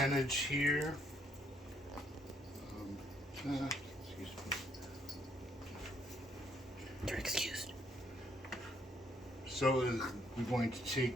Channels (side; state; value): both; normal; correlation 0.69